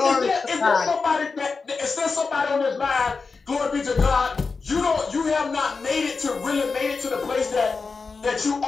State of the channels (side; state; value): right; quieter; 4.6 dB